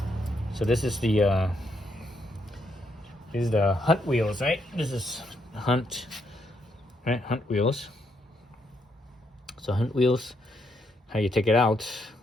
So this is the Hunt wheels, right? This is Hunt, right? Hunt wheels. So Hunt wheels, how you take it out,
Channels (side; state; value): both; normal; correlation 0.77